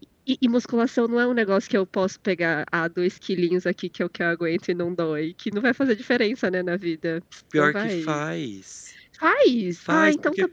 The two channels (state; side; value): identical; both; correlation 1.00